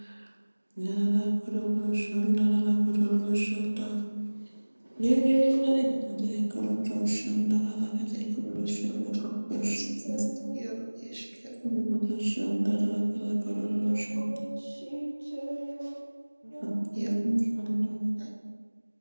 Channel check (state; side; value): inverted; both; correlation -1.00